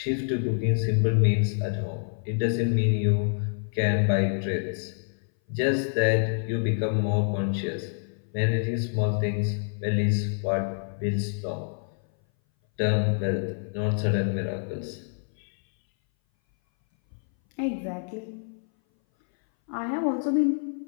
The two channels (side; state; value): right; silent; 59 dB below the other